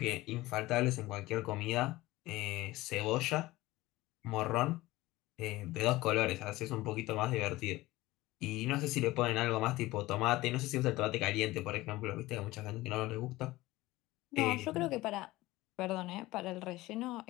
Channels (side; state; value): right; quieter; 18.5 dB